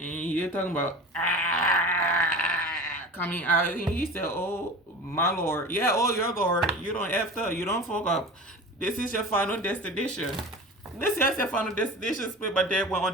you're talking about coming out. And he said, oh my Lord. Yeah, oh your Lord. You don't F up. You don't fuck up. This is your final destination. This is your final destination. Split by death, went on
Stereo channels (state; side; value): normal; both; correlation 0.34